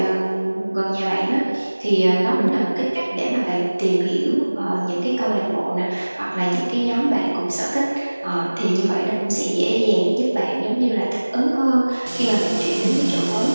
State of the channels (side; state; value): both; inverted; correlation -1.00